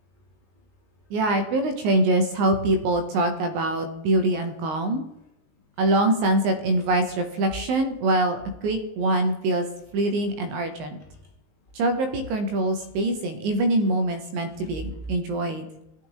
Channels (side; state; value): left; late; 19 ms